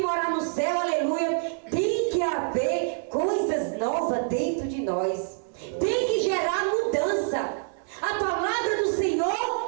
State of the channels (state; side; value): silent; left; digital silence